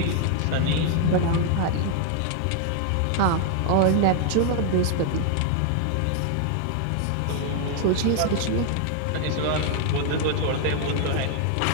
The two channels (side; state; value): both; different; correlation 0.00